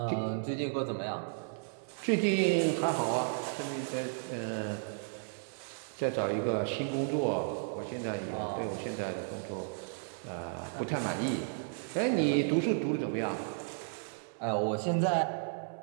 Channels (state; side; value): silent; left; 55 dB below the other